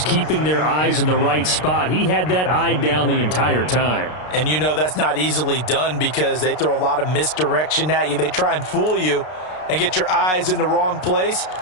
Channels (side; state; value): right; late; 33 ms